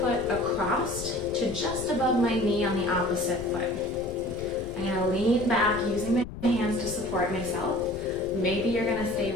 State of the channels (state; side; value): noise; left; rumble, 11 dB below the sound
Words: foot across to just above my knee on the opposite foot. I'm going to lean back using my hands to support myself. Maybe you're going to stay